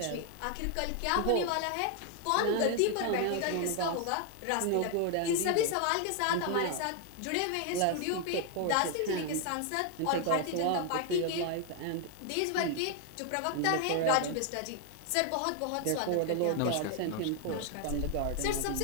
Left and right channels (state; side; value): different; both; correlation 0.00